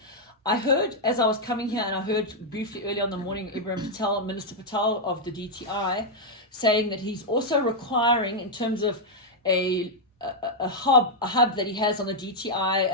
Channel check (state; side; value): normal; both; correlation -0.03